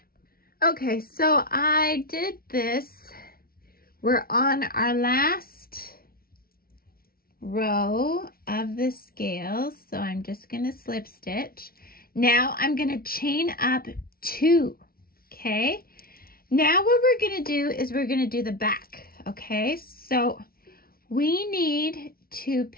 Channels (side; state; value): right; late; 0.43 ms